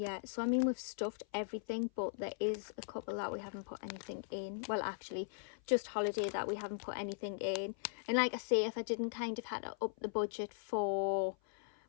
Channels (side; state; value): right; silent; 52 dB below the other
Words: so I mean, we've stuffed everything, but there is a couple that we haven't put anything in. Well, actually, just holiday that we haven't put anything in. And like I say, if I didn't kind of had to up the budget for